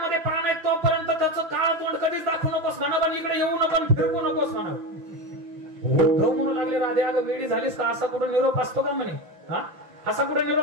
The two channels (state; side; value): late; left; 5.9 ms